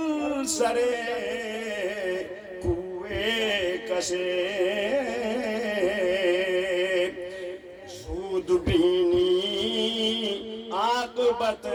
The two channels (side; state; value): both; identical; correlation 1.00